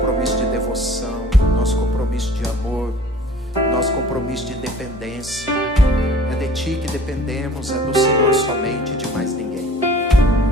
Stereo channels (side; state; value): both; normal; correlation 0.48